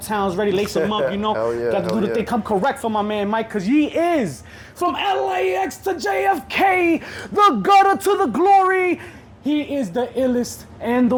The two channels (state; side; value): identical; both; correlation 1.00